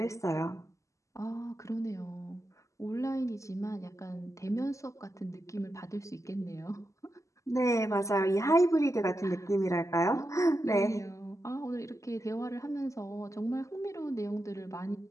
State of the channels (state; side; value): late; right; 0.15 ms